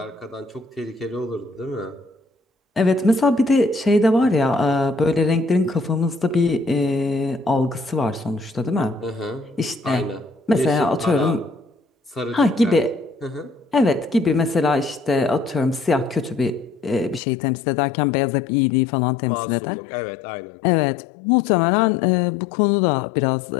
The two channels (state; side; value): drops out; right; at 17.2 s